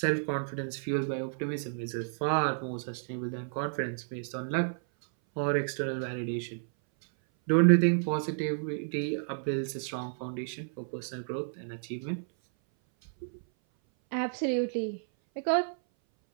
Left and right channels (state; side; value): silent; left; 57 dB below the other